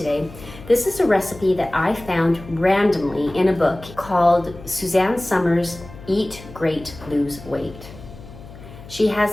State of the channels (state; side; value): noise; left; hum, 17 dB below the sound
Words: This is a recipe that I found randomly in a book called Suzanne Somers' Eat Great, Lose Weight. She